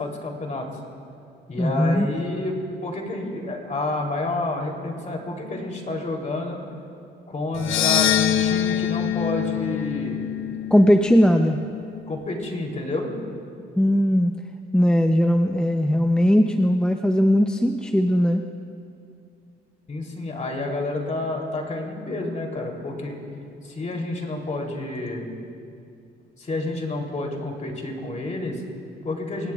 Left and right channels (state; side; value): normal; both; correlation 0.79